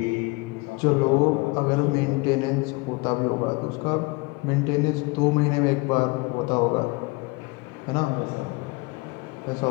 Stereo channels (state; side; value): quieter; right; 25.7 dB